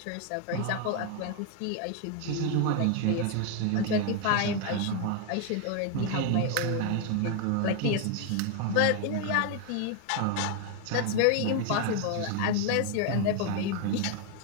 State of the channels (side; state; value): both; different; correlation 0.01